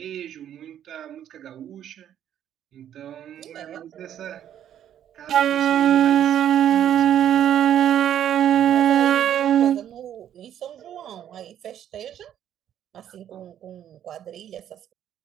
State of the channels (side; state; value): left; quieter; 10.4 dB